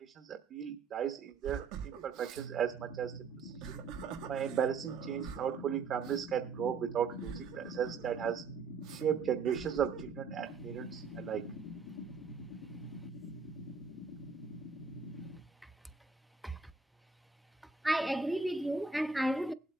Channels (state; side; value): quieter; left; 5.0 dB